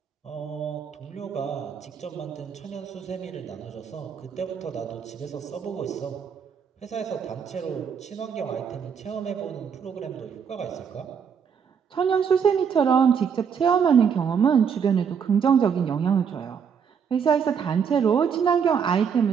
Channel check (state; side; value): quieter; left; 7.0 dB